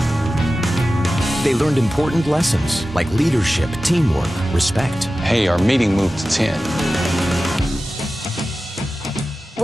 They learned important lessons like leadership, teamwork, respect. Hey, our meeting moved to 10.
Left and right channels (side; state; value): both; normal; correlation 0.94